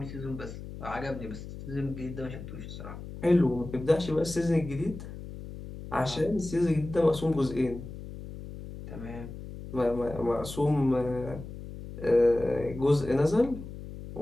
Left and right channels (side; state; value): left; noise; hum, 11 dB below the sound